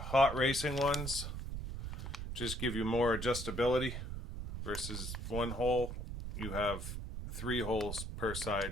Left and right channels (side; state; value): right; noise; rumble, 6 dB below the sound